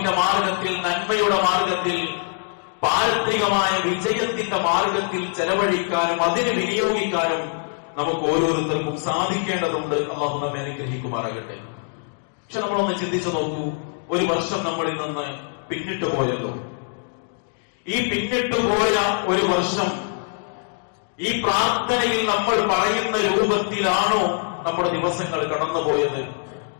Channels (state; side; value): silent; right; 60 dB below the other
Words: മാർഗത്തിൽ, നന്മയുടെ മാർഗത്തിൽ, പാരത്രികമായ വിജയത്തിന്റെ മാർഗത്തിൽ ചെലവഴിക്കാനും അതിന് വിനിയോഗിക്കാനും നമുക്ക് ഓരോരുത്തർക്കും സാധിക്കേണ്ടതുണ്ട്. അല്ലാഹു നമ്മെ അനുഗ്രഹിക്കുമാറാകട്ടെ. പക്ഷെ നമ്മളൊന്ന് ചിന്തിച്ചു നോക്കൂ, ഒരു വർഷം നമ്മളിൽ നിന്ന് പിന്നിട്ട് പോയല്ലോ. ഈ പിന്നിട്ട് പോയ ഒരു വർഷം ഈ പ്രാർത്ഥനയിൽ നമ്മൾ പറയുന്ന രൂപത്തിലാണോ നമ്മുടെ ദിവസങ്ങൾ കടന്നുപോയത്?